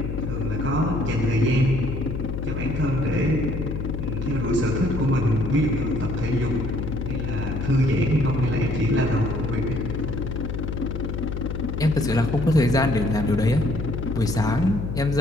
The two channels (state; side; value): noise; left; hum, 4 dB below the sound